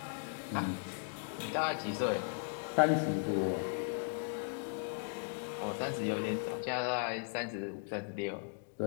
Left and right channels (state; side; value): silent; right; digital silence